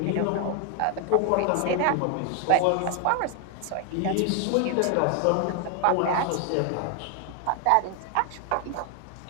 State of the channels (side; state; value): both; different; correlation 0.01